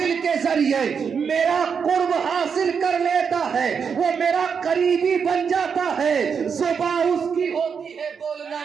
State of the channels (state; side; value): quieter; left; 6.4 dB